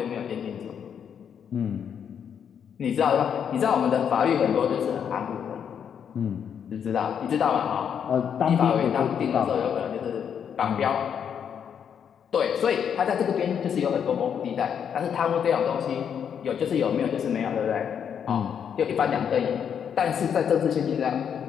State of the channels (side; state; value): right; quieter; 8.0 dB